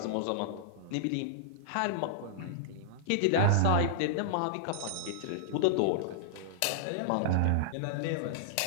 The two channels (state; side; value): different; both; correlation -0.01